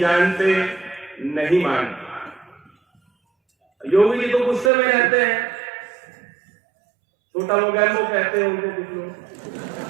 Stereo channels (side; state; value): left; drops out; at 4.7 s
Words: नहीं मानते। योगी जी तो गुस्से में रहते हैं, छोटा मोगैम्बो कहते हैं उनको कुछ लोग।